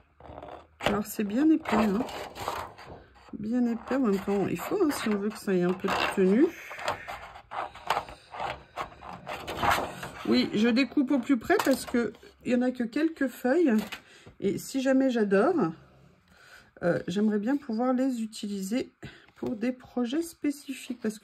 Alors, c'est bien épais, hein. Bien épais, en même temps, il faut, hein, si on veut que ça ait un peu de tenue. Oui, je découpe au plus près parce que il n'y en a que quelques feuilles. Et si jamais j'adore, j'aimerais bien pouvoir les utiliser pour des projets spécifiques. Parce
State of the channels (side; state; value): both; identical; correlation 1.00